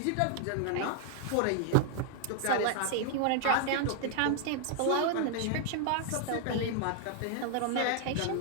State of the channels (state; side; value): different; both; correlation 0.00